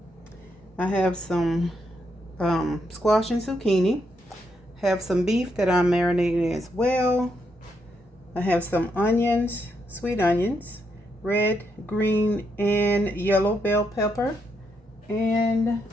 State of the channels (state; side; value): normal; both; correlation 0.79